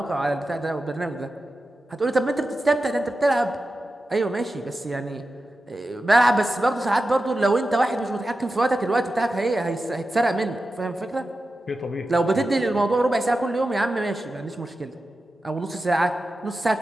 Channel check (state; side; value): normal; both; correlation 0.92